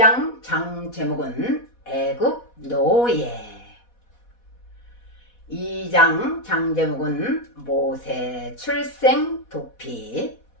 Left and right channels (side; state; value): right; late; 4.1 ms